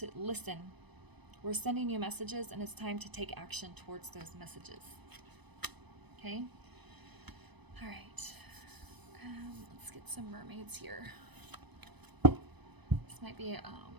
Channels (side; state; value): left; late; 1.0 ms